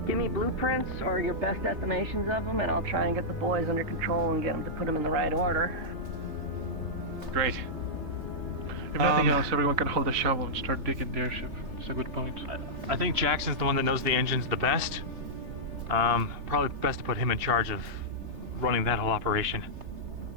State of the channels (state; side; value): late; left; 3.3 ms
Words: Give me blueprints or your best estimations of them, and I'll try and get the boys under control and get them to put them in the right order. Great. If nothing else, everyone can hold a shovel and start digging the airship. That's a good point. I think Jackson's the one that knows the engines the best. Probably best to put him in charge of running that whole operation.